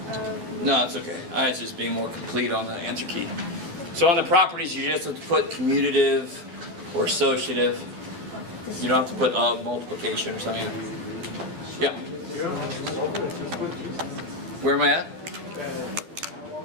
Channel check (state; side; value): late; left; 11 ms